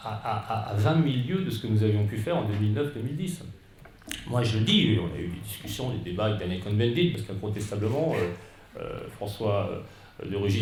à 20 000 lieues de ce que nous avions pu faire en 2009-2010. Moi, je le dis, on a eu des discussions, des débats avec Daniel Cohn-Bendit, parce qu'incontestablement, François de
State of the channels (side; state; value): both; identical; correlation 1.00